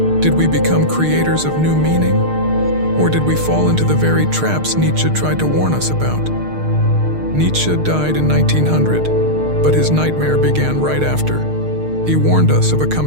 Did we become creators of new meaning? Or did we fall into the very traps Nietzsche tried to warn us about? Nietzsche died in 1900, but his nightmare began right after. He warned us of a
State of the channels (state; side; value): late; left; 6.5 ms